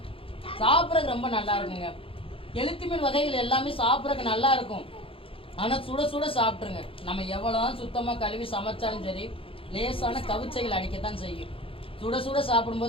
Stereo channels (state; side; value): late; right; 0.26 ms